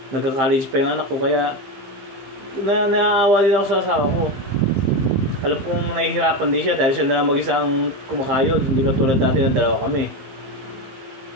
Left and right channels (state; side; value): late; left; 15 ms